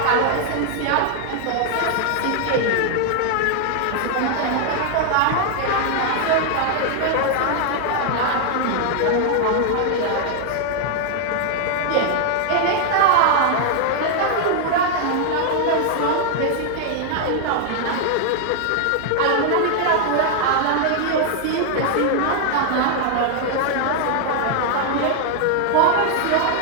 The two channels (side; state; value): both; different; correlation 0.00